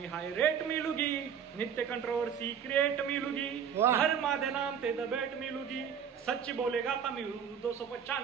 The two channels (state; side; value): quieter; left; 7.8 dB